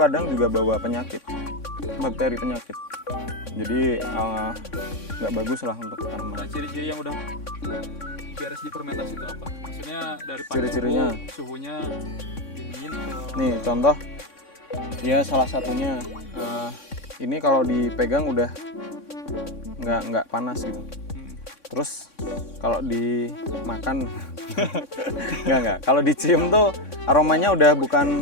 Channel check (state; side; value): late; right; 3.6 ms